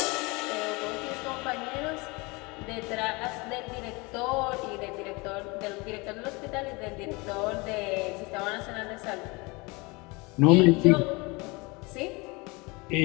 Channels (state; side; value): quieter; right; 26.2 dB